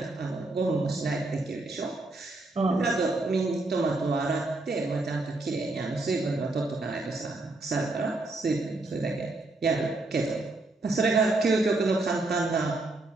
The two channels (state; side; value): quieter; left; 3.0 dB